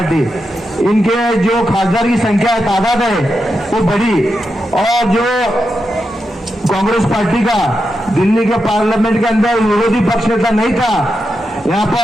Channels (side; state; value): both; normal; correlation 0.87